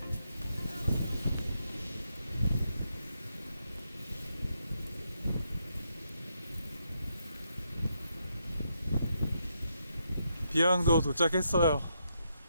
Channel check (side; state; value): both; inverted; correlation -0.80